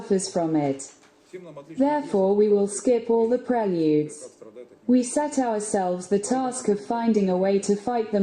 from it. Therefore we will skip all the preludes. We set ourselves the task of finding a way to fight the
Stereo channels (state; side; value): identical; both; correlation 1.00